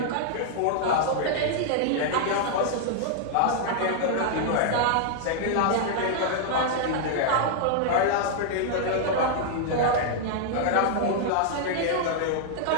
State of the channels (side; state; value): both; different; correlation -0.01